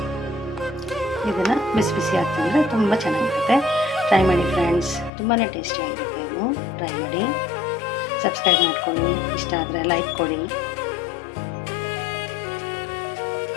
ಇದನ್ನು ಬಿಸಿ ಬಿಸಿ ಹಾಕ್ತಿದ್ರೆ ತುಂಬ ಚೆನ್ನಾಗಿರುತ್ತೆ. ಟ್ರೈ ಮಾಡಿ ಫ್ರೆಂಡ್ಸ್, ತುಂಬಾ ಟೇಸ್ಟಿಯಾಗಿರುತ್ತೆ. ಇದು ಟ್ರೈ ಮಾಡಿ, ಸಬ್ಸ್ಕ್ರೈಬ್ ಮಾಡ್ಕೊಳ್ಳಿ, ಇಷ್ಟ ಆದರೆ ಲೈಕ್ ಕೊಡಿ.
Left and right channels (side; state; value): right; drops out; at 5.1 s